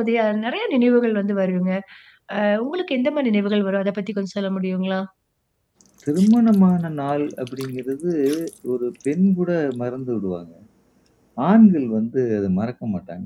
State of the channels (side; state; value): both; identical; correlation 1.00